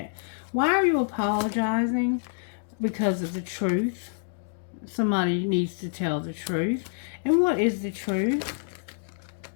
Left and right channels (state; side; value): silent; right; digital silence